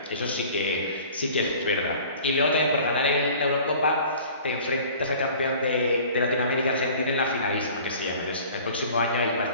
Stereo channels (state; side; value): inverted; both; correlation -0.46